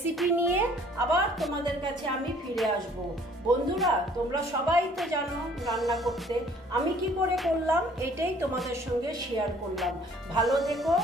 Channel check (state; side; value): normal; both; correlation 0.57